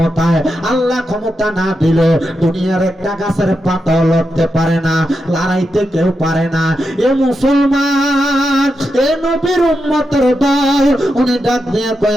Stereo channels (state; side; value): normal; both; correlation 0.87